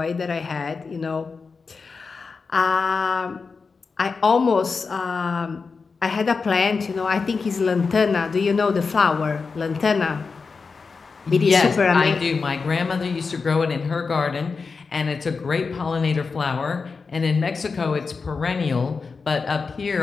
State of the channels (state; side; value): quieter; right; 4.8 dB